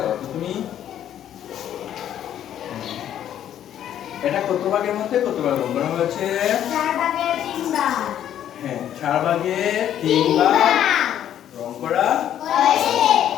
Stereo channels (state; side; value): quieter; right; 10.7 dB